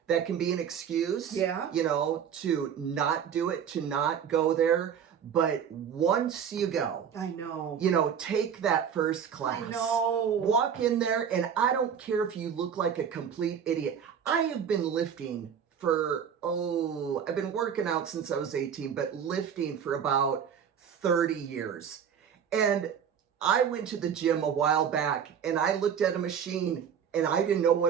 that can be an excuse, to not do it, to not go there. But once you go, I know, take that first class. I know. Walk in there, and I don't care if you look like a complete idiot. I have been lifting I've been working out since I was 18, but lifting for about 30 years. And I went to the gym a while back, and I looked at a machine, and I didn't know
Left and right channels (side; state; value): left; quieter; 7.9 dB